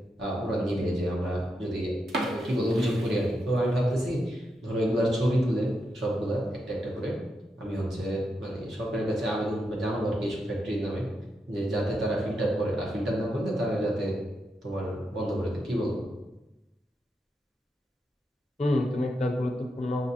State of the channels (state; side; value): normal; both; correlation 0.84